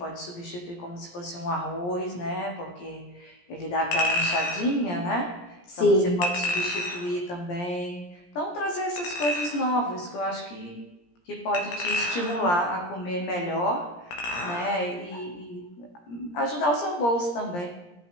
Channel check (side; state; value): right; late; 17 ms